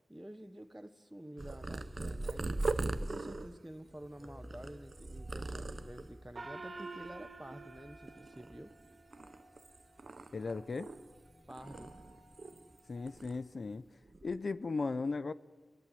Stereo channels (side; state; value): both; normal; correlation 0.93